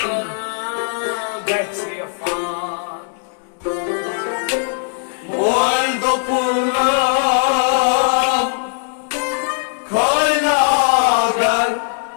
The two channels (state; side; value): silent; right; digital silence